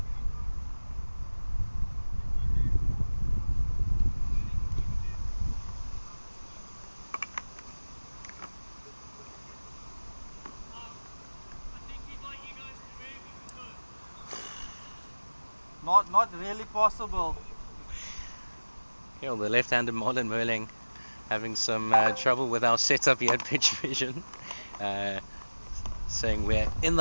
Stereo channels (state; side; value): inverted; both; correlation -1.00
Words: Not really possible. Yeah, well, the left-handed Marlon Muirling having some trouble with our setup here at Pitch Vision. Saying we're in